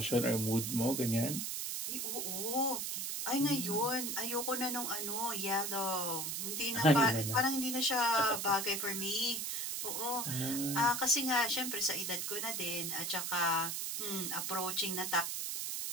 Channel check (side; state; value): right; noise; hiss, 2 dB below the sound